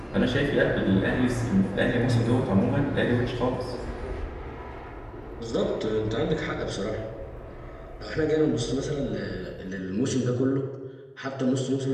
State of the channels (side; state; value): both; identical; correlation 1.00